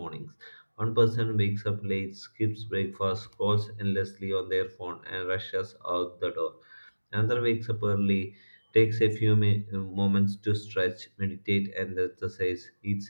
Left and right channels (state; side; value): inverted; both; correlation -1.00